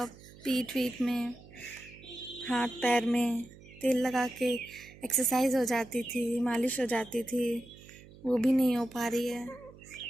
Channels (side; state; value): right; noise; hum, 20 dB below the sound